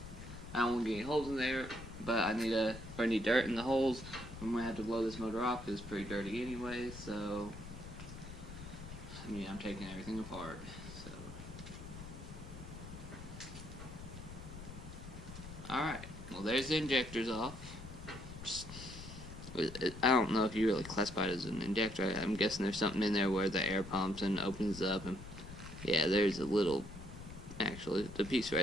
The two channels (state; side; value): noise; left; rumble, 13 dB below the sound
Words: I don't want to get any holes in there, but I need dirt in the holes. I'm going to have to blow this motor off because it's pretty dirty anyway, so I mean, I'm taking everything apart, so. Alright, well there's the injectors off. I don't know if you really classify it as an injector. I'm guessing there's something in there where the air pumps and opens up, and yeah, there's a little, actually, the piece